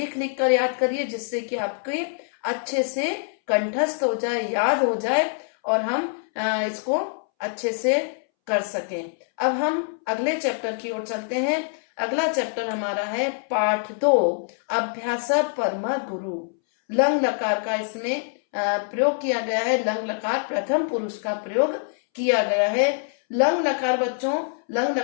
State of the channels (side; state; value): right; silent; 62 dB below the other